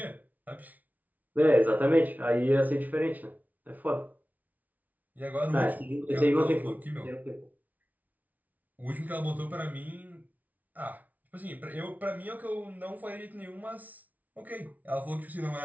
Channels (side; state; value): left; late; 0.075 ms